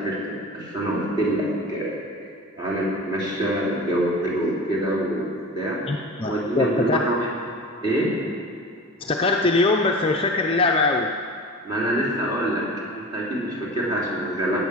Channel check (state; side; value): normal; both; correlation 0.35